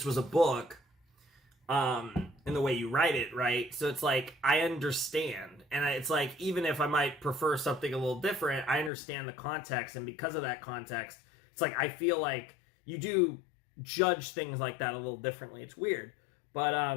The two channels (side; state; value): right; drops out; at 8.9 s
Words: was a book, in the way you write it, right? So it's like, I understand. And it's like, even if I might prefer something a little different, I understand the context. And because of that context, it's like, I feel like you do judge things like that a little differently. It's weird.